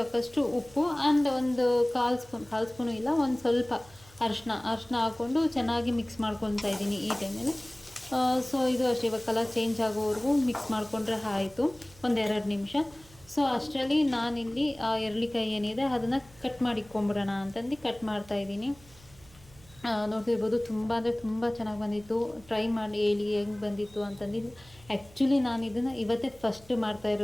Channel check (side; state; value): right; noise; hum, 25 dB below the sound